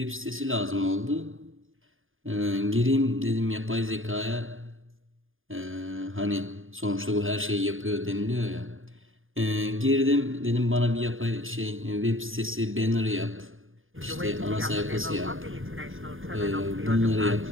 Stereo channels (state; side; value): late; left; 0.59 ms